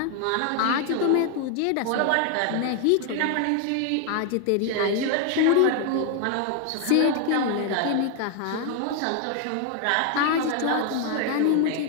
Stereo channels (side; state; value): both; different; correlation 0.00